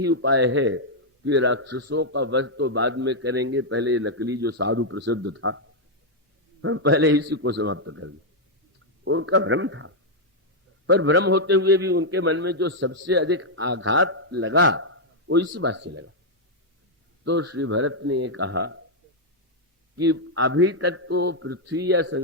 उपाय है कि राक्षसों का वध तो बाद में करेंगे, पहले नकली जो साधु प्रसिद्ध था, हम पहले इसी को समाप्त कर दें। उनका भ्रम था, पर भ्रम होते हुए भी उनके मन में जो सबसे अधिक आघात लगा वो इसी बात से लगा। तो श्री भरत ने ये कहा कि अभी तक तो पृथ्वी या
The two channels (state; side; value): normal; both; correlation -0.03